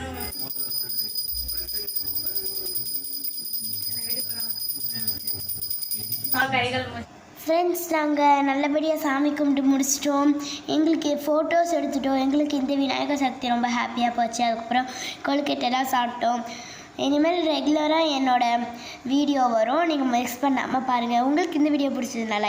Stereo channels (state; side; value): identical; both; correlation 1.00